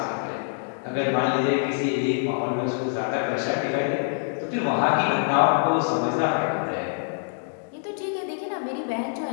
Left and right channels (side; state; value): right; silent; digital silence